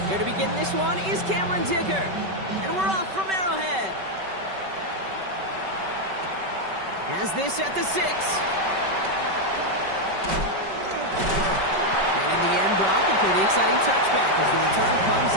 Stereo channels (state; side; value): late; left; 5.2 ms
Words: Here to begin this one is Cameron Dicker. And we're off from Arrowhead. Has this at the 6. And in the end, Brock, a pretty exciting touchback as the return comes